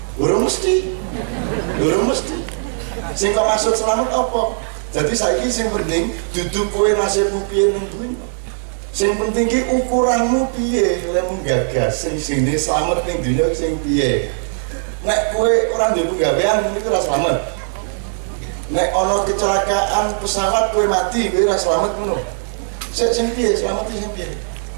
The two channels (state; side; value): silent; left; digital silence